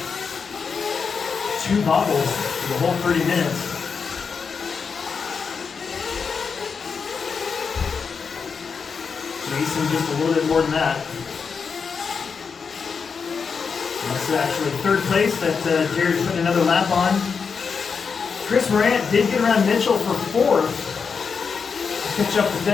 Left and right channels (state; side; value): quieter; right; 5.7 dB